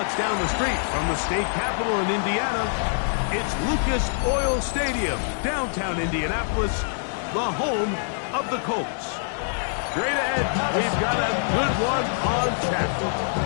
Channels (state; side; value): silent; right; digital silence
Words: down the street from the state capitol in Indiana, it's Lucas Oil Stadium, downtown Indianapolis, the home of the Colts. Straight ahead, we've got a good one on tap.